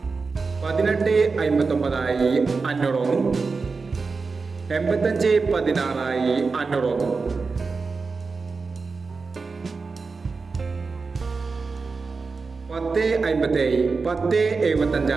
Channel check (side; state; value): left; quieter; 4.4 dB